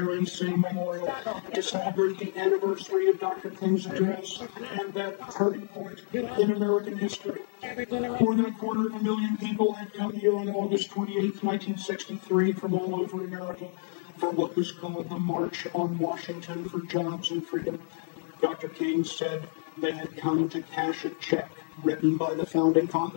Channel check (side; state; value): right; silent; 58 dB below the other